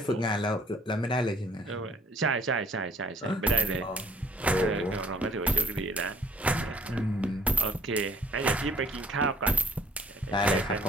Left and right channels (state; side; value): normal; both; correlation 0.62